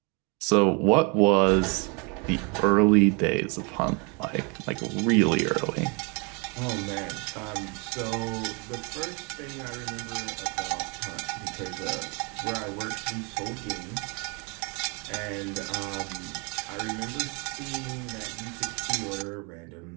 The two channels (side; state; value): left; quieter; 32.0 dB